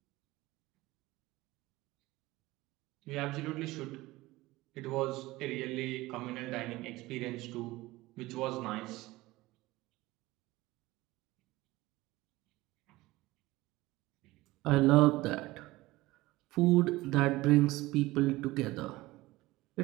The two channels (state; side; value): quieter; left; 19.2 dB